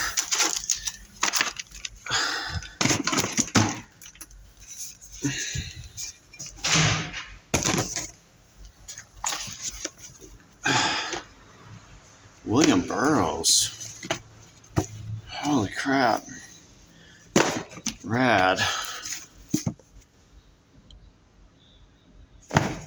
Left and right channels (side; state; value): both; identical; correlation 1.00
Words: William Burroughs. Holy crap. Rad.